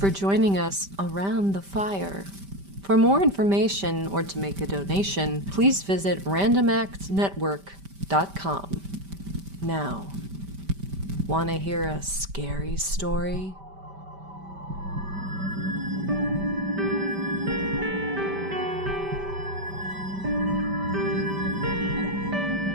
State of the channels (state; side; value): late; left; 5.1 ms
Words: joining us around the fire. For more information or to make a donation, please visit randomactsnetwork.com. Now, want to hear a scary story?